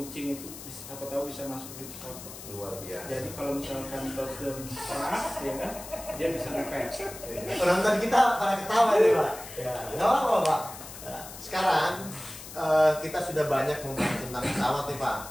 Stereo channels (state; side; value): noise; left; hiss, 13 dB below the sound